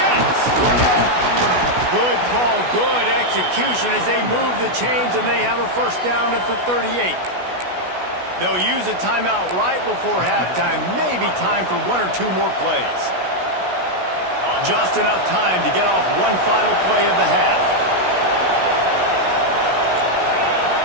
Good call, good execution as they move the chains, and they have a first down at the 38. They'll use a timeout right before halftime. Maybe time for 1 or 2 more plays. Just enough time to get off one final play of the half.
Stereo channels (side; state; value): left; late; 16 ms